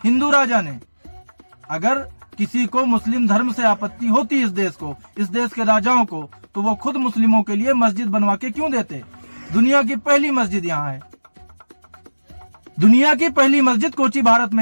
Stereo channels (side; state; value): both; inverted; correlation -1.00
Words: हिंदू राजा ने। अगर किसी को मुस्लिम धर्म से आपत्ति होती इस देश के राजाओं को, तो वो खुद मुस्लिमों के लिए मस्जिद बनवा के क्यों देते? दुनिया की पहली मस्जिद यहाँ है, दुनिया की पहली मस्जिद कोची भारत